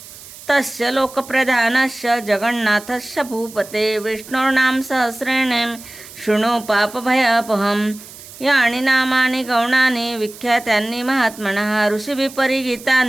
तस्य लोकप्रधानस्य जगन्नाथस्य भूपते विष्णोर्नाम सहस्रेण शृणु पापभयापहम्। यानि नामानि गौणानि विख्यातानि महात्मनः ऋषिभिः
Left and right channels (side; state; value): right; noise; hiss, 17 dB below the sound